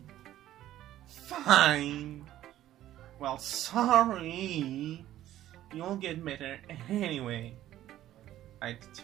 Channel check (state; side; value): quieter; left; 13.3 dB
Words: Fine. Well, sorry. You'll get better anyway. I'd